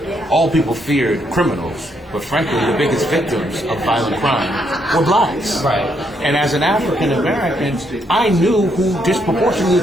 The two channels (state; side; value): normal; both; correlation 0.75